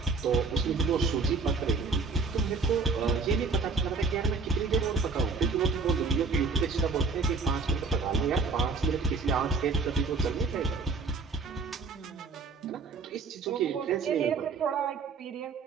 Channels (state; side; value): quieter; left; 4.2 dB